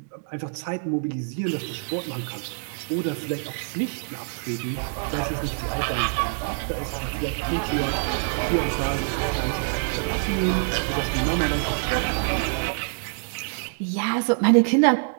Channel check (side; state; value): left; silent; 61 dB below the other